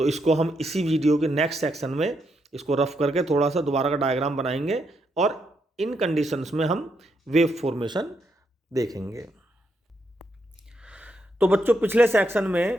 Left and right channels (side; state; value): both; normal; correlation 0.79